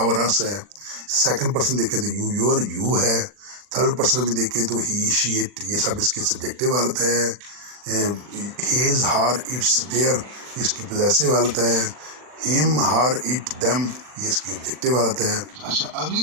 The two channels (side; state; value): left; late; 40 ms